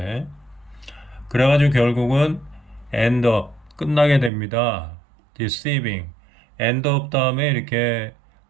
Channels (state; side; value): drops out; left; at 4.3 s